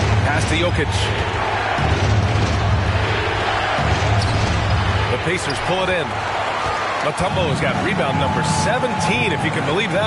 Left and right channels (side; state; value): both; identical; correlation 1.00